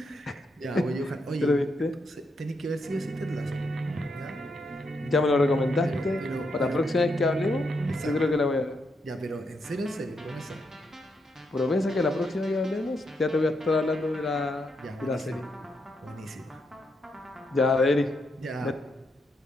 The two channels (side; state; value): both; normal; correlation 0.80